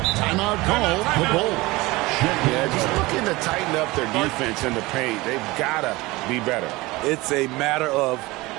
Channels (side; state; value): left; quieter; 21.3 dB